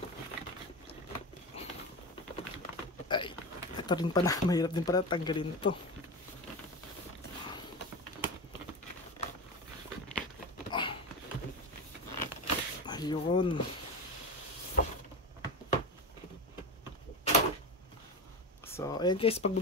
Ay, ito rin pala. Mahirap din pala tanggalin to. Ayun. So, ayan guys, pag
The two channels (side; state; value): both; normal; correlation 0.23